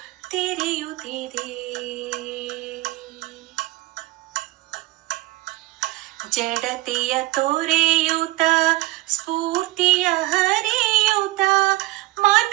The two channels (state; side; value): quieter; left; 19.0 dB